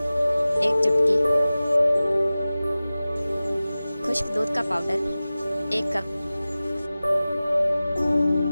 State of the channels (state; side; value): inverted; both; correlation -0.97